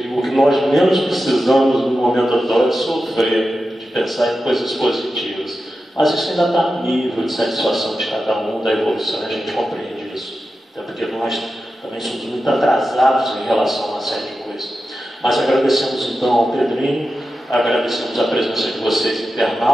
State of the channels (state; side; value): normal; both; correlation 0.91